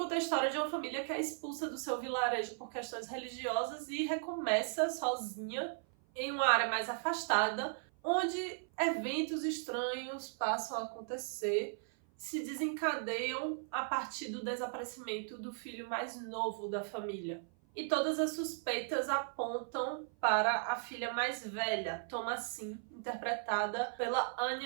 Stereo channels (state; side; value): silent; left; 53 dB below the other